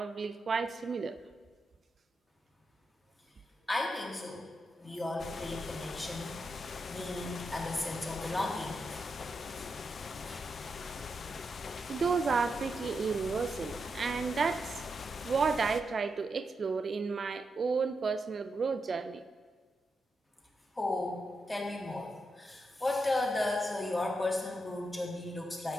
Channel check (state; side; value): normal; both; correlation 0.85